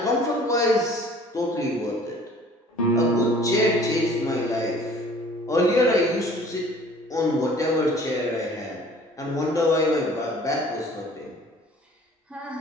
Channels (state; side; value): normal; both; correlation 0.51